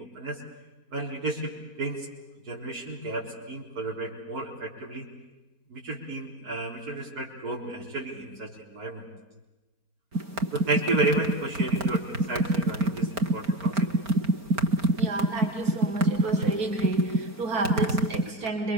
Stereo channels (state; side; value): late; left; 4.4 ms